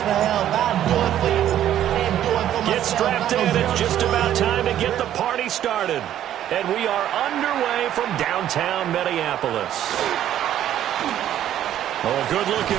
for help. I'll do it for you. And do it for myself. Get strapped in. It's just about time to get the party started. And we are underway from downtown Minneapolis. Oh,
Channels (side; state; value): left; quieter; 11.5 dB